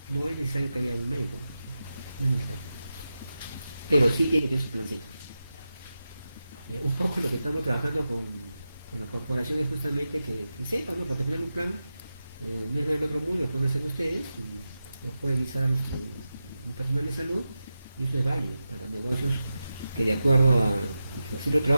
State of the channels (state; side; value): inverted; both; correlation -0.91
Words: no es necesario que haya un médico, no es necesario. Pero sí tiene que tener su plantilla. Un poco lo que estamos trabajando con la corporación es justamente que sepan, ¿no? Porque al final un plan no es del otro mundo, lo pueden hacer ustedes, y lo puede visar un personal de salud, y eso es válido para negocios que, de acuerdo a los centros de